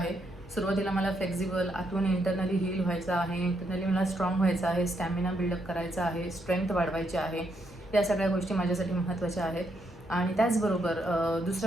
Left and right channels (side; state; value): both; normal; correlation 0.77